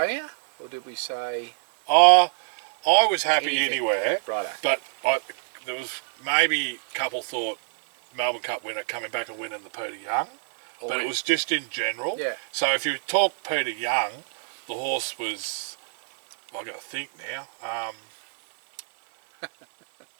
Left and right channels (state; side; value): silent; left; 58 dB below the other